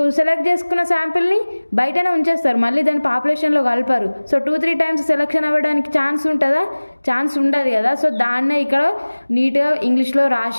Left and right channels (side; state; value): both; inverted; correlation -1.00